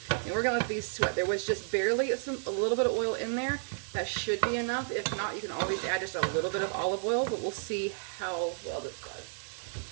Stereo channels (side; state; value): left; silent; digital silence